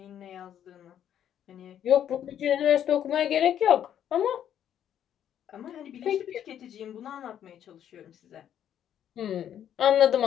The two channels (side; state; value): right; quieter; 10.0 dB